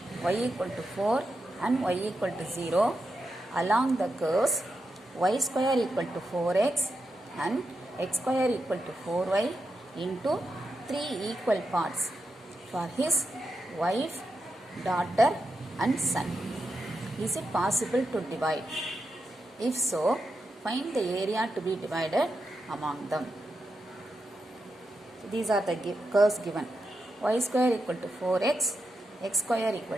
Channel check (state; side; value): normal; both; correlation 0.87